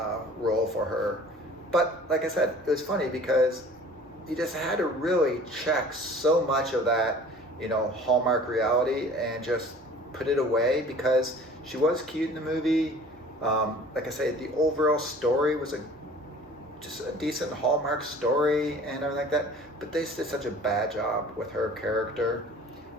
role for her. But like I said, it was funny because you just had to really check so much of that, you know, Hallmark reality and just put it away, because she was cute in the movie. Like I say, the overall story was just a decent Hallmark story and everything like that, but they did such a bad job with her character.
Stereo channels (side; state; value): both; normal; correlation 0.47